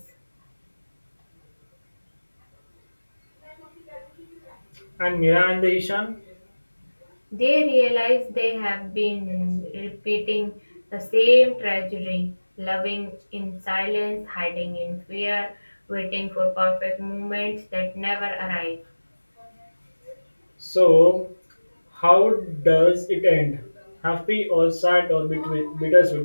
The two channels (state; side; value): inverted; both; correlation -1.00